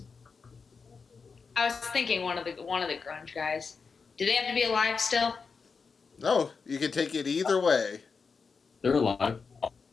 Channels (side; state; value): right; quieter; 5.1 dB